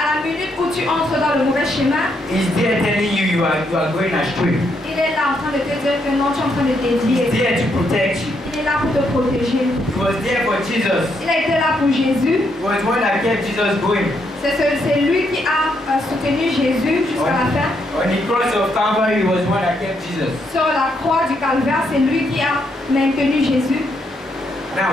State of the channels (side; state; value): both; normal; correlation 0.76